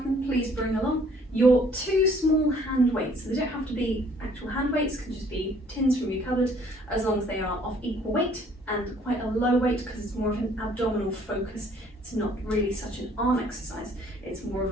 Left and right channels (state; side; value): normal; both; correlation 0.59